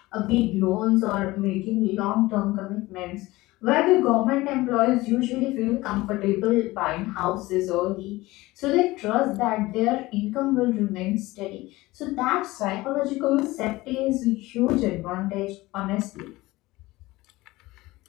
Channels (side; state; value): right; quieter; 19.5 dB